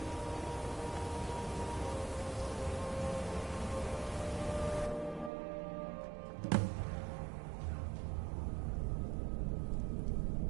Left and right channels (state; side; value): drops out; left; at 5.3 s